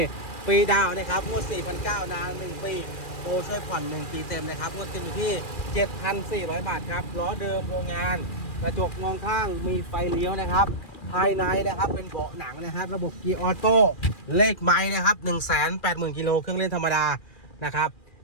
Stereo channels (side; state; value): right; late; 2.4 ms